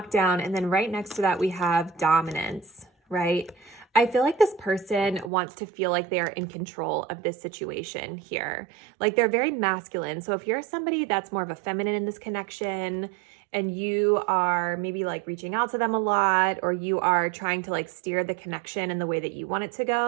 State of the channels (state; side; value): drops out; left; at 5.3 s